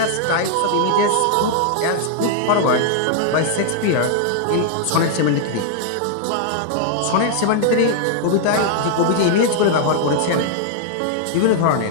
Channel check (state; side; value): different; both; correlation 0.00